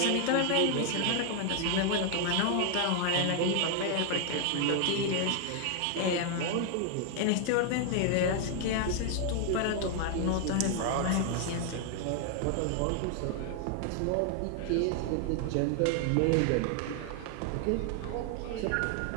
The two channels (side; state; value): both; different; correlation 0.00